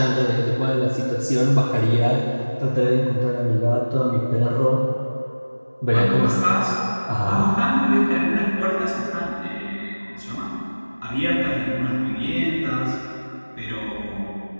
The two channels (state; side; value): inverted; both; correlation -1.00